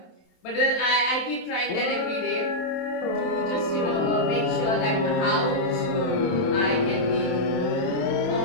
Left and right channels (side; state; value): right; late; 27 ms